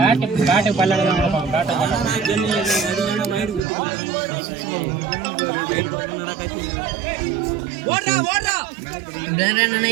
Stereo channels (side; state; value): left; drops out; at 3.6 s